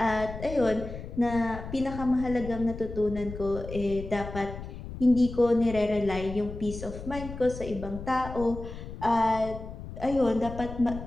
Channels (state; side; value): noise; left; rumble, 10 dB below the sound